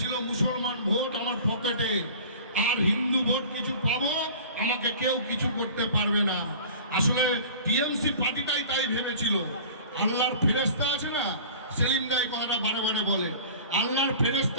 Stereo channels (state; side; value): inverted; both; correlation -0.41